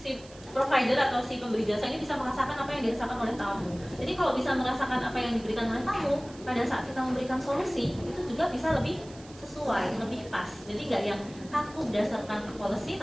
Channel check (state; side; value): noise; right; hiss, 21 dB below the sound